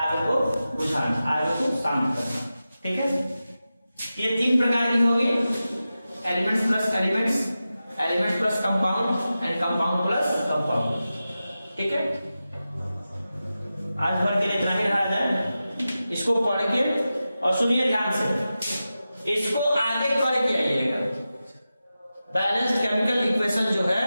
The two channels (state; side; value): inverted; both; correlation -0.93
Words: को बुझाना, आग को शांत करना, ठीक है। ये तीन प्रकार की होगी, elements plus elements, elements plus compound and compound plus compound, ठीक है। आज भर के लिए इतना ही रहा जाए। इसको पढ़ के और सुनिए ध्यान से, इसको आगे करके आइएगा। बैलेंस्ड केमिकल इक्वेशन जो है